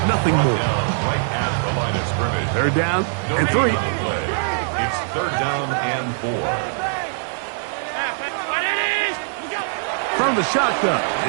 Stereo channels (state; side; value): silent; left; digital silence